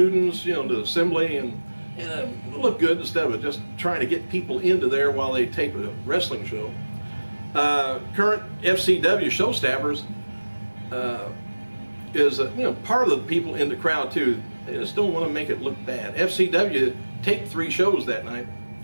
the assembly, and it'll look good instead of just trying to get people into there while they tape a wrestling show. Current FCW show staffers is part of the people in the crowd too. They just don't want to make it look bad. FCW taped 3 shows that night.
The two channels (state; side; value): inverted; both; correlation -1.00